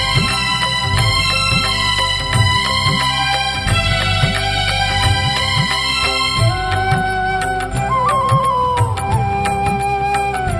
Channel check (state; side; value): identical; both; correlation 1.00